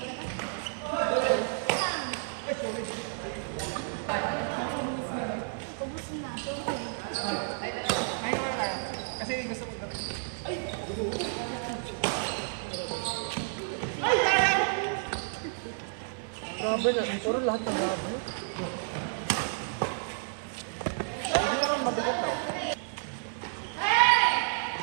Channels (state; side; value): silent; left; 57 dB below the other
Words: Grabe na, puro lahat ng grabe.